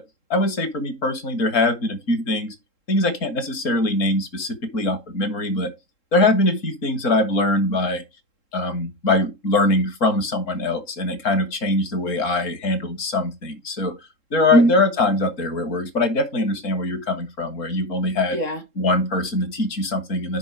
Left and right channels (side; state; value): right; late; 3.7 ms